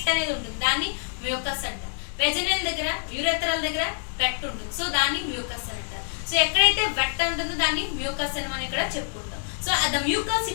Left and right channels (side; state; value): right; silent; digital silence